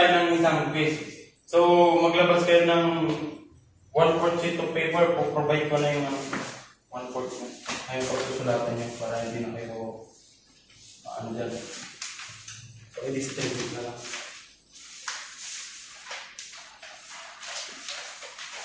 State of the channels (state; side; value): identical; both; correlation 1.00